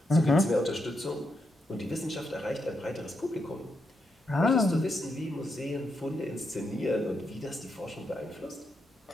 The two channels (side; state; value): both; normal; correlation 0.82